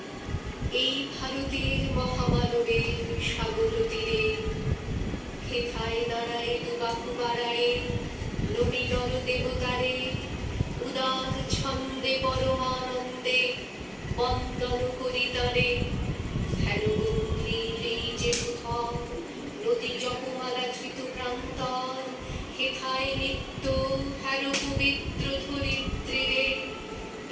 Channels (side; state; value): both; identical; correlation 1.00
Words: এই ভারতের মহামানবে সাগর তীরে। হেথায় দাঁড়ায় দুবাহু বাড়ায় নবী নর দেবতারে, উদার ছন্দে পরমানন্দে বন্দন করি তারে। হেন গম্ভীর এই যে কোথাও নদী জপমালা ধৃত প্রান্তর, হেথায় নিত্য হেন পবিত্র ধরিত্রীরে